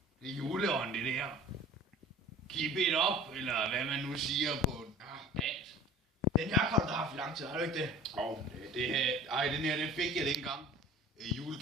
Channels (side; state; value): both; normal; correlation 0.43